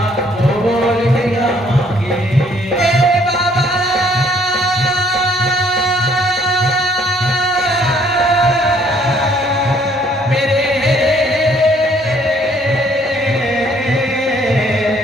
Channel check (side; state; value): both; normal; correlation 0.63